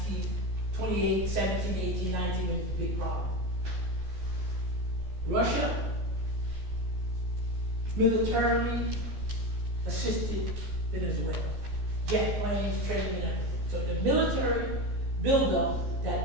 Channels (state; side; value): late; left; 14 ms